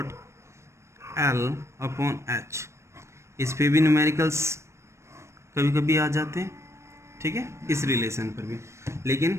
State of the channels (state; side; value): late; left; 0.13 ms